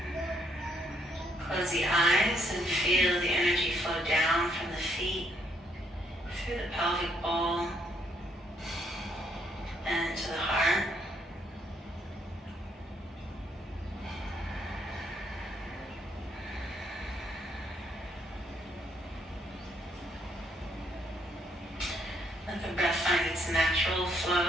Close the eyes and feel the energy flow down from the feet, through the pelvic bowl, and to the heart. Let the breath find its natural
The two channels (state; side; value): normal; both; correlation 0.72